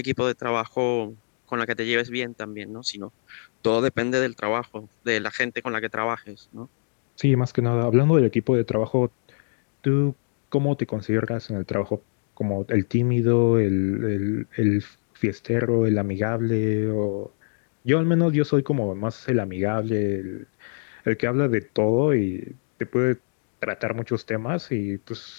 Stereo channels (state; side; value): silent; right; 62 dB below the other